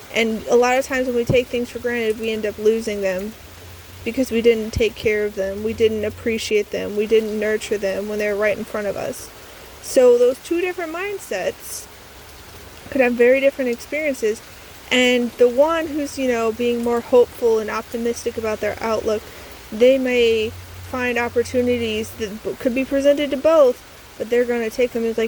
And a lot of times when we take things for granted, we end up losing them. because we didn't take care of them, we didn't appreciate them, we didn't nurture them when they were right in front of us. So those two different mindsets could have very different experiences. And the one who's, being more hopeful and optimistic about their outlook, they may find opportunities that could be presented to both, but they're going to take them as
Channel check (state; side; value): identical; both; correlation 1.00